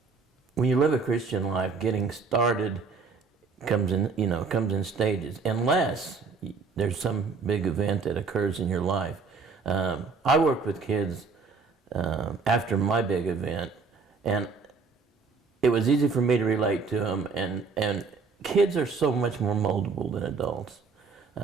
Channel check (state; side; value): quieter; left; 4.8 dB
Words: when you live a Christian life, getting started comes in stages, unless there's some big event that occurs in your life. I worked with kids after my big event, and it was easy for me to relate to them, and kids are so much more moldable than adults.